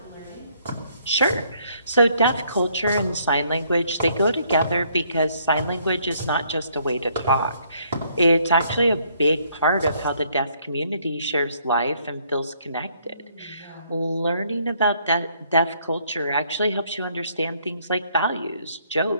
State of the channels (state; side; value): inverted; both; correlation -0.67